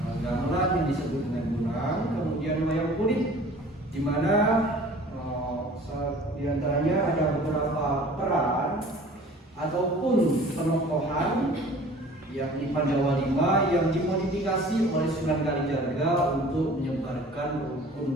gamelan yang disebut dengan Bonang, kemudian wayang kulit, di mana di antaranya ada beberapa peran ataupun penokohan yakni Pandawa V yang dimodifikasi oleh Sunan Kalijaga untuk menyebarkan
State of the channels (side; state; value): both; normal; correlation 0.47